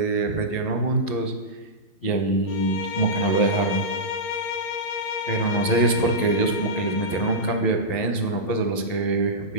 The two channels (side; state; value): right; late; 11 ms